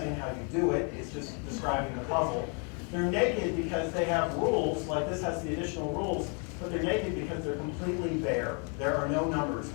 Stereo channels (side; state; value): right; quieter; 37.6 dB